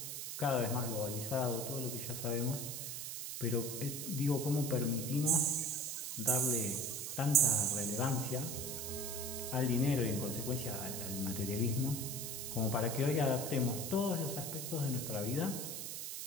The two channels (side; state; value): right; noise; hiss, 5 dB below the sound